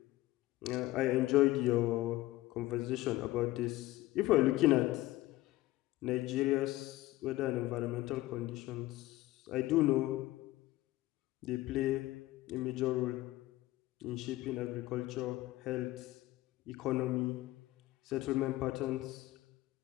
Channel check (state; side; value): quieter; right; 17.4 dB